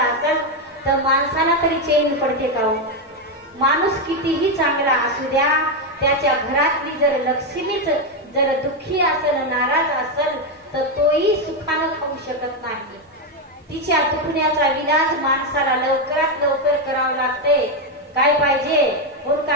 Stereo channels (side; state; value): both; normal; correlation 0.06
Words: असेल तर माणसाला तरी चैन पडते का. माणूस कितीही चांगला असू द्या, त्याच्या घरातली जर लक्ष्मीच जर दुःखी असेल, नाराज असेल तर तोही सुखानं खाऊ शकत नाही. तिच्या दुखण्याचा विलाज माणसाला लवकरात लवकर करावं लागते. काय पाहिजे, कोण